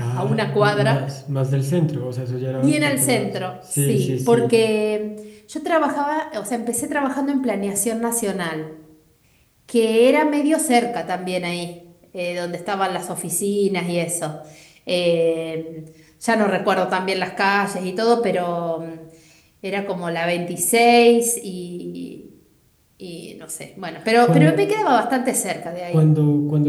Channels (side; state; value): both; identical; correlation 1.00